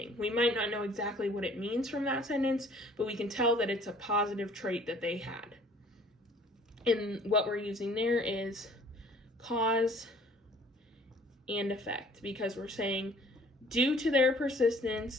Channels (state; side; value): normal; both; correlation 0.54